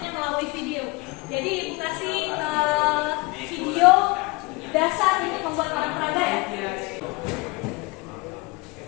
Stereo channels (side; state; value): right; quieter; 25.3 dB